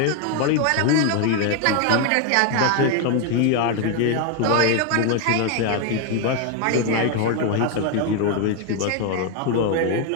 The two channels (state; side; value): different; both; correlation 0.01